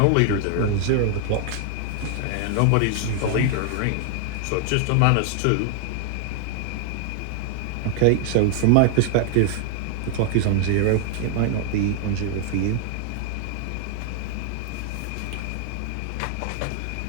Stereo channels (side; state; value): both; different; correlation 0.00